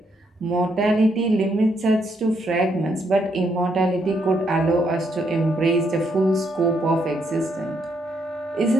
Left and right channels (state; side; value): normal; both; correlation 0.75